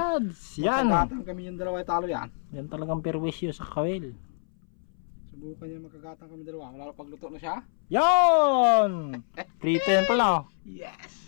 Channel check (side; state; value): right; silent; 60 dB below the other